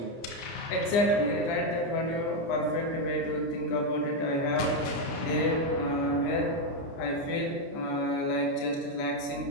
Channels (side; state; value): right; late; 29 ms